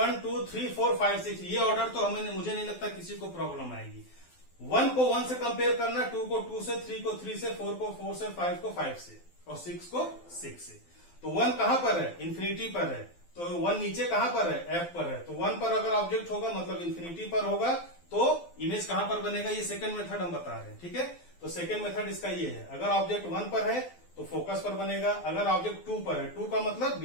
2 3 4 5 6, ये ऑर्डर तो मुझे नहीं लगता किसी को प्रॉब्लम आएगी। 1 को 1 से कंपेयर करना, 2 को 2 से, 3 को 3 से, 4 को 4 से, 5 को 5 से, और 6 को 6 से। तो 1 कहां पर है? इन्फिनिटी पर है। तो 1 नीचे कहां पर है? F पर है। तो 1 पर अगर ऑब्जेक्ट होगा मतलब इन्फिनिटी पर होगा, तो इमेज कहां पर बनेगा? ये सेकंड मेथड हम बता रहे हैं। ठीक है, तो सेकंड मेथड इसका ये है, अगर ऑब्जेक्ट 1 पर है तो फोकस पर बनेगा, अगर ऑब्जेक्ट 2 पर है, 2 का मतलब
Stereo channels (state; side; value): late; right; 12 ms